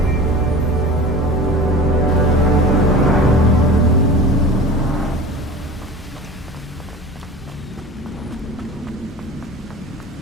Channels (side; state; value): both; normal; correlation 0.37